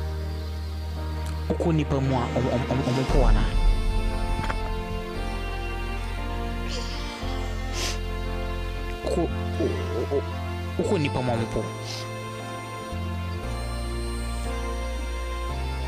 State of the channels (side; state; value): both; identical; correlation 1.00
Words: uko nipa mu a omopo ana uko nipa mu omopo